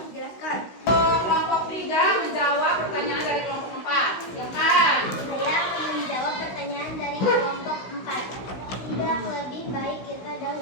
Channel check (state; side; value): late; right; 16 ms